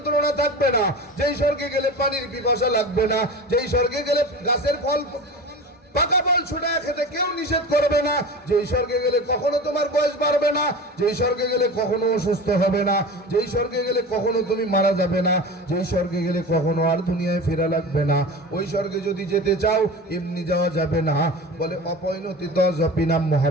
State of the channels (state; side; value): normal; both; correlation 0.32